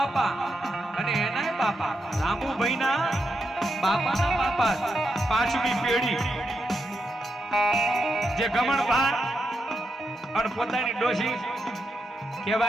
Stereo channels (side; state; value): both; normal; correlation 0.84